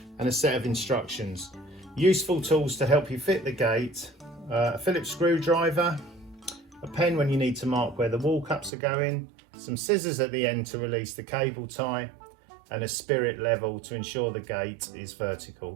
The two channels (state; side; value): drops out; left; at 8.7 s